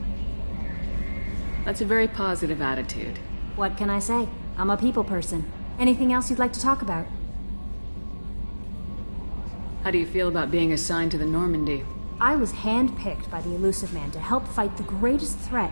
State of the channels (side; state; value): both; inverted; correlation -1.00